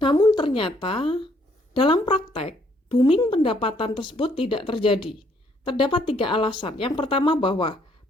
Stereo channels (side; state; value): both; normal; correlation 0.67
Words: ternyata dalam praktek, booming pendapatan tersebut tidak terjadi. Terdapat 3 alasan. Yang pertama bahwa